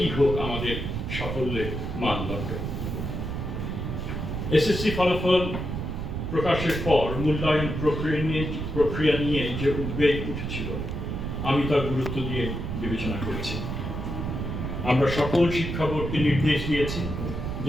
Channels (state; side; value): noise; right; rumble, 4 dB below the sound